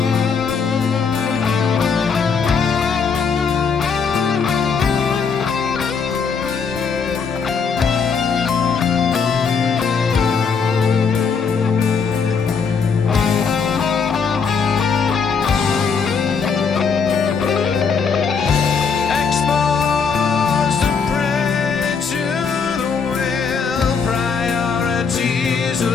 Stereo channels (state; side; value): quieter; right; 5.7 dB